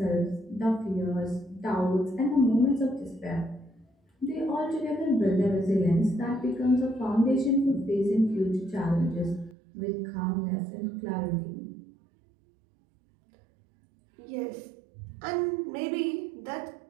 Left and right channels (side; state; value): left; drops out; at 9.6 s